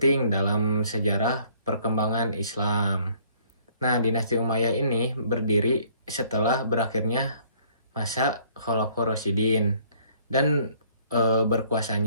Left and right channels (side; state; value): both; inverted; correlation -0.60